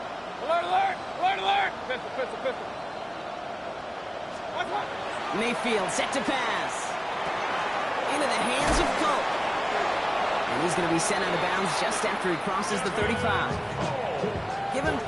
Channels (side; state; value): both; identical; correlation 1.00